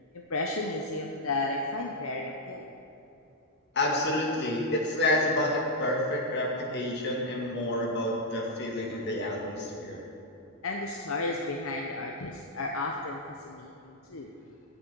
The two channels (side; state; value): both; normal; correlation -0.03